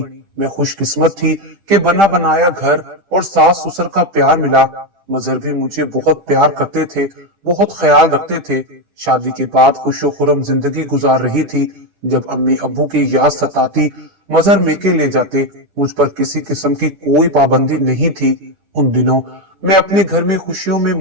मैं खुशकिस्मत थी कि बना बनाया घर और सास ससुर का प्यार मिला। मजहर भी मुझे बहुत प्यार करते थे, बहुत ख्याल रखते थे। शादी के बाद खुशो खुरम जिंदगी गुजार रही थी। जब अम्मी अब्बू की याद सताती, मजहर मेके ले जाते। मुझ पर किसी किस्म की कोई पाबंदी नहीं थी। उन दिनों मैं अपने घर में खुशियों में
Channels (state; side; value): late; left; 10 ms